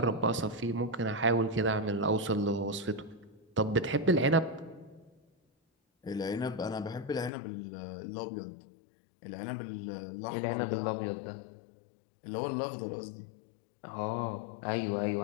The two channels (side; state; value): right; drops out; at 7.3 s